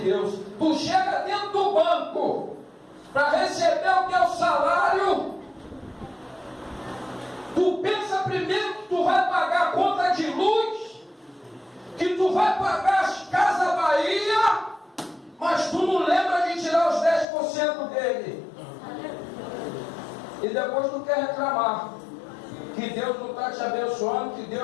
tu chega dentro do banco para receber o teu salário. Tu pensa primeiro que tu vai pagar a conta de luz, que tu vai pagar as Casas Bahia, mas tu não lembra de tirar os 10% dele. E depois tu quer reclamar que Deus não está te abençoando, que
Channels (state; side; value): drops out; right; at 17.2 s